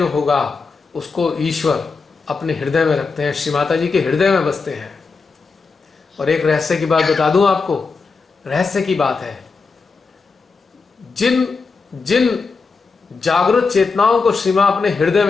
होगा उसको ईश्वर अपने हृदय में रखते हैं, श्री माता जी के हृदय में बसते हैं। और एक रहस्य की बात बता दूं आपको, रहस्य की बात है, जिन जागृत चेतनाओं को श्री मां अपने हृदय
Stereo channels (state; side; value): quieter; right; 4.6 dB